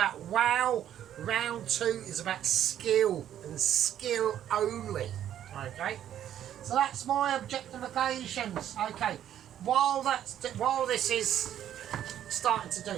wow. Round 2 is about skill, and skill only, okay? So that's my objectifications, okay? While this is starting to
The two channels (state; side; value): quieter; left; 10.8 dB